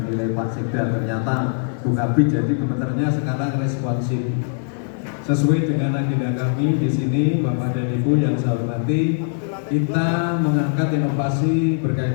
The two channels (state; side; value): silent; right; digital silence